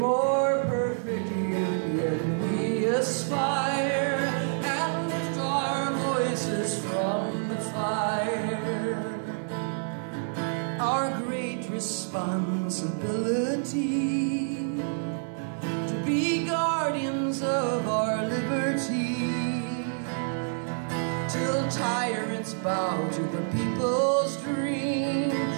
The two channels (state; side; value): silent; left; 59 dB below the other